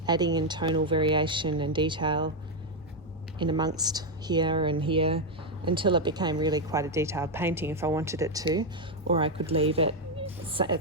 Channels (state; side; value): normal; both; correlation 0.03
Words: adding in tonal variation and detail in amongst here and here until it became really quite a detailed painting if I wanted it to, or I could leave it